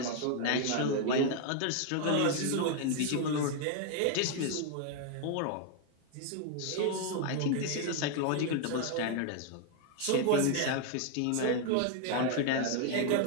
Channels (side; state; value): both; different; correlation 0.00